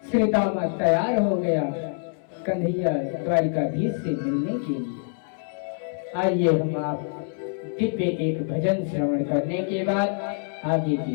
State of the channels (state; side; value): silent; right; 61 dB below the other